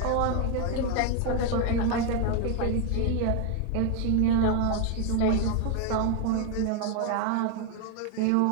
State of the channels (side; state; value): both; different; correlation 0.01